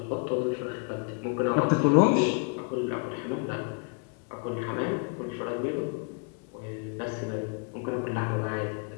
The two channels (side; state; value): right; quieter; 36.5 dB